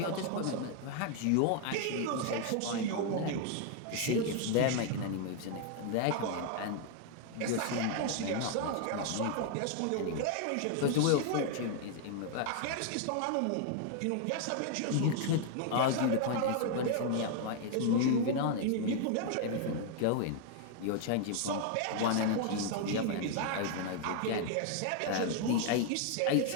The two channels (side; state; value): both; different; correlation 0.00